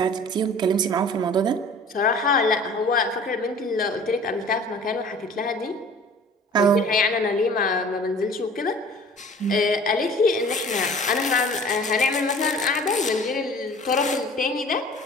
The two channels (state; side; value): normal; both; correlation 0.46